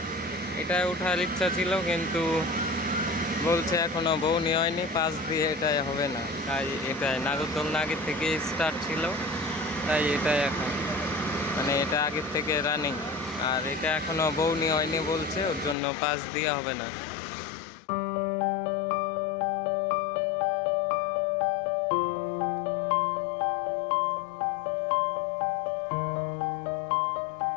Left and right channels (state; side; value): drops out; right; at 15.8 s